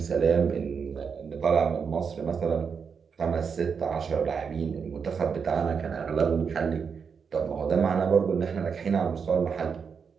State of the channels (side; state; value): left; quieter; 6.1 dB